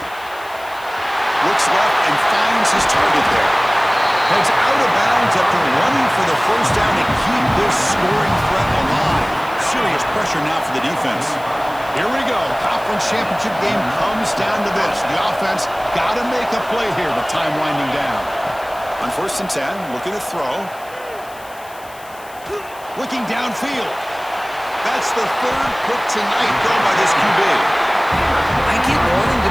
Looks left and finds his target there. Heads out of bounds after running for the first down to keep this scoring threat alive. Serious pressure now for the defense. Here we go. Conference championship game comes down to this. The offense got to make a play here with time winding down. On 1st and 10, looking to throw. Looking downfield. That's the third pick tonight thrown by this QB. I get wanting to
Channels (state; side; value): noise; left; hiss, 22 dB below the sound